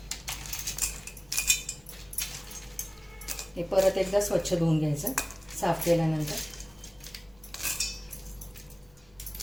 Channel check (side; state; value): left; noise; hum, 29 dB below the sound